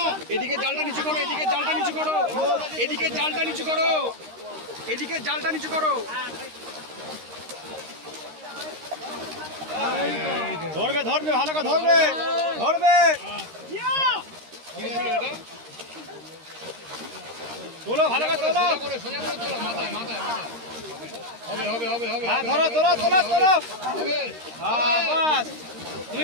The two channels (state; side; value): late; left; 13 ms